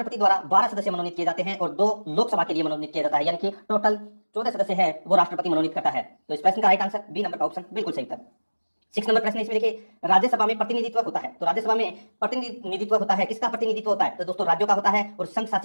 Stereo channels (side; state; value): both; inverted; correlation -1.00